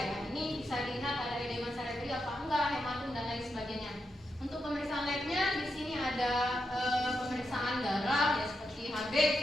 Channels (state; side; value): normal; both; correlation 0.85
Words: Ini bisa dilihat ada edema cerebri apa enggak, hematum dan lain sebagainya. Untuk pemeriksaan labnya di sini ada pemeriksaan darah, ya, seperti HB